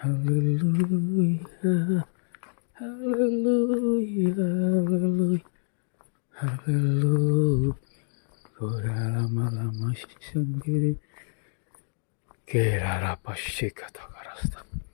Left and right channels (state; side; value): silent; right; 60 dB below the other